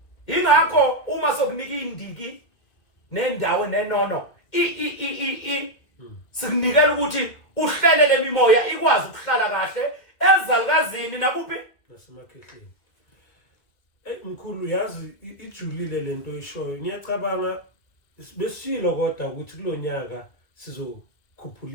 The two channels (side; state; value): right; late; 2.1 ms